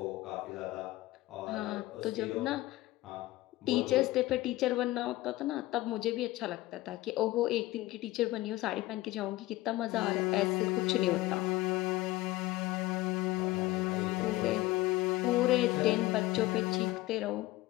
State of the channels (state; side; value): quieter; right; 17.9 dB